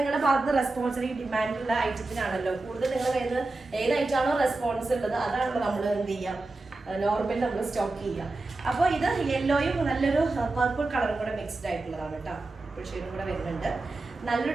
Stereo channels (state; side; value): quieter; left; 3.2 dB